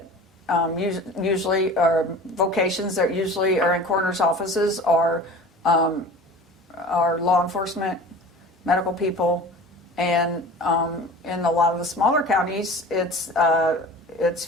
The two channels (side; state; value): both; normal; correlation 0.39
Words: usually are vocations that usually are in coroners' offices are law enforcement, medical people, and in a lot of the smaller counties, it's